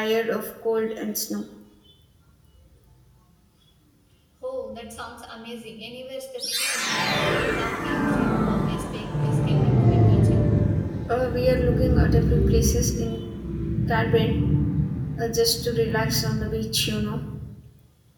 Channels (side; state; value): both; identical; correlation 1.00